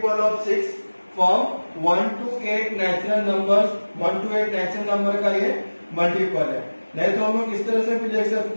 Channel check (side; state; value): both; inverted; correlation -1.00